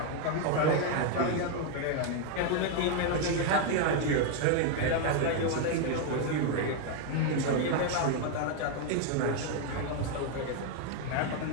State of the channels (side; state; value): both; different; correlation 0.01